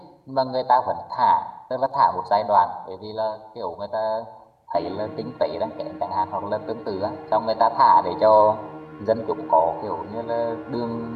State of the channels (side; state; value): both; identical; correlation 1.00